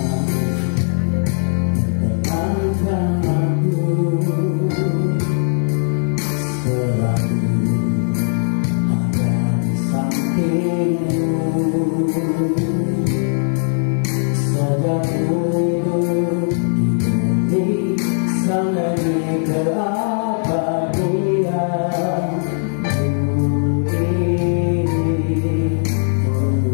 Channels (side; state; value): right; silent; digital silence